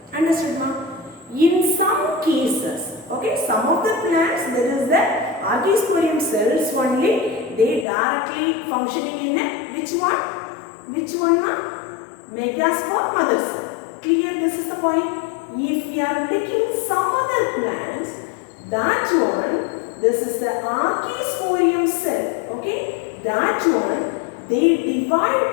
Understood, ma? In some cases, okay, some of the plants there is the archisporium cells only. They directly functioning in a which one? Which one, ma? Megaspore mother cell. Clear? This is the point. If we are taking some other plants, that one, this is the archisporium cell. Okay, that one they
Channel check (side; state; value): right; drops out; at 7.9 s